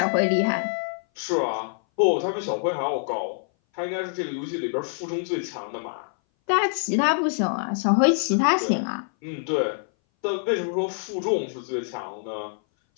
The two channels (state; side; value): silent; right; 59 dB below the other